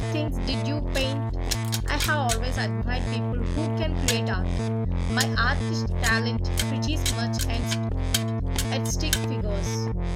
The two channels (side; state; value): both; identical; correlation 1.00